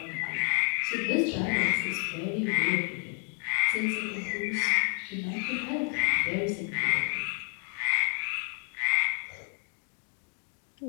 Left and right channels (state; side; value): quieter; right; 37.2 dB